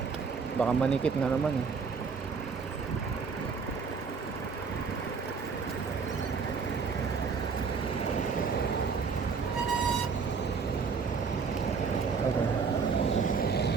baka manikit na naman, eh. Okay.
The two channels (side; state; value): left; quieter; 5.4 dB